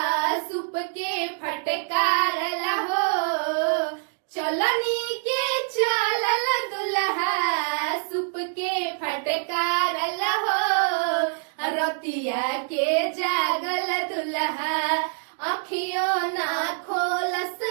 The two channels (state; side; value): silent; left; digital silence